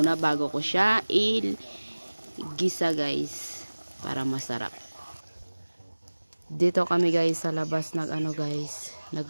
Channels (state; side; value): inverted; both; correlation -1.00